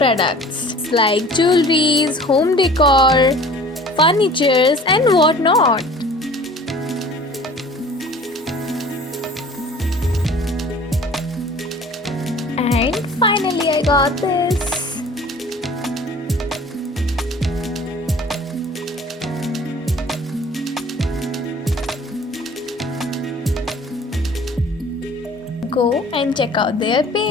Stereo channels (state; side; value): normal; both; correlation 0.47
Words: like jewelries, home decor, furnitures and whatnot. And finally I got this. Go and check out their